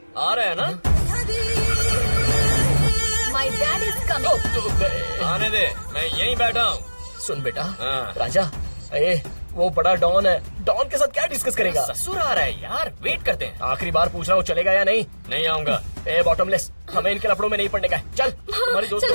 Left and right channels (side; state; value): both; inverted; correlation -1.00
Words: आ रहे हैं ना? My dad is coming. आने दे, मैं यहीं बैठा हूँ। सुन बेटा, हाँ। राजा, ए वो बड़ा डॉन है, डॉन के साथ क्या डिस्कस करेगा? ससुर आ रहा है यार, वेट करते हैं। आखिरी बार पूछ रहा हूँ, चलेगा या नहीं? नहीं आऊंगा। ए बॉटमलेस, हमें इनके लफड़ों में नहीं पड़ने का है। चल, तुम्हारी दोस्त